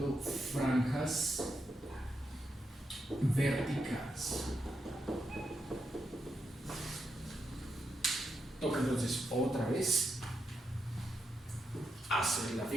franjas verticales. Toca entonces otra vez hacer la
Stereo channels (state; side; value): normal; both; correlation 0.84